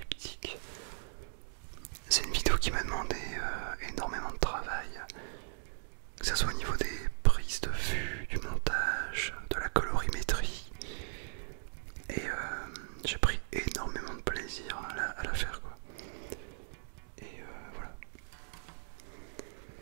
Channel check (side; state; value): left; silent; digital silence